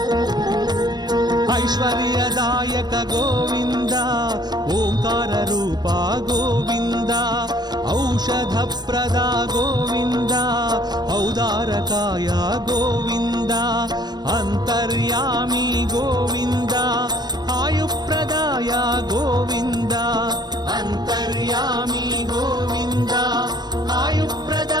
ಐಶ್ವರ್ಯದಾಯಕ ಗೋವಿಂದ ಓಂಕಾರ ರೂಪ ಗೋವಿಂದ ಔಷಧಪ್ರದ ಗೋವಿಂದ ಔದಾರಕಾಯ ಗೋವಿಂದ ಅಂತರ್ಯಾಮಿ ಗೋವಿಂದ ಆಯುಪ್ರದಾಯ ಗೋವಿಂದ ಅಂತರ್ಯಾಮಿ ಗೋವಿಂದ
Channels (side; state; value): left; late; 0.20 ms